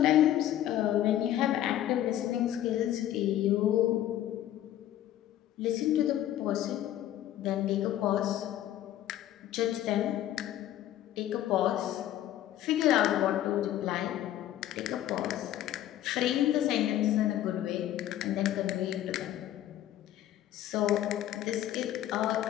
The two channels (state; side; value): quieter; right; 12.6 dB